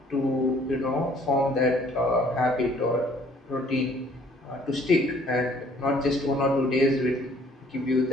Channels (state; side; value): normal; both; correlation 0.59